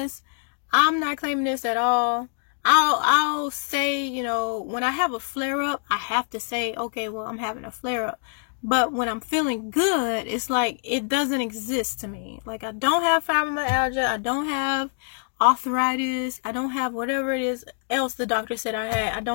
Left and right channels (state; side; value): silent; right; 62 dB below the other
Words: I'm not claiming this at all. I'll say, you know, when I have a flare-up, I have to say, okay, well, I'm having a flare-up. But when I'm feeling good, it's like it doesn't exist to me. Like, I don't have fibromyalgia. I don't have arthritis. I don't have whatever it is else the doctor said I had. I